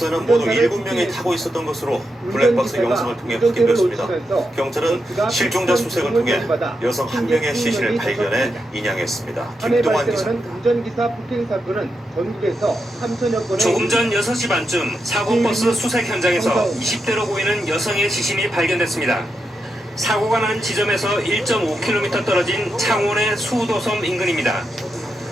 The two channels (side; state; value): both; normal; correlation 0.85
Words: 모두 7명이 타고 있었던 것으로 블랙박스 영상을 통해 확인됐습니다. 경찰은 실종자 수색을 통해 여성 한 명의 시신을 발견해 인양했습니다. 김동환 기자. 운전기사 폭행 사건은 전국에서 3천여 건의 조금 전 6시 반쯤 사고버스 수색 현장에서 20대로 보이는 여성의 시신이 발견됐습니다. 사고가 난 지점에서 1.5km 떨어진 창원의 수도섬 인근입니다.